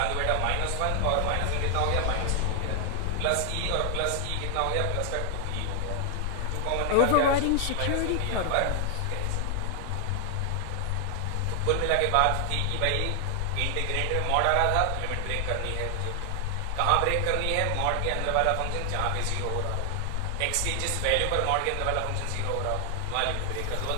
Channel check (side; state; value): both; different; correlation 0.00